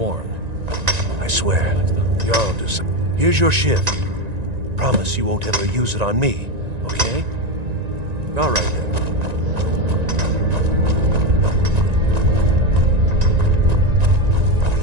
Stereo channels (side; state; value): left; late; 1.9 ms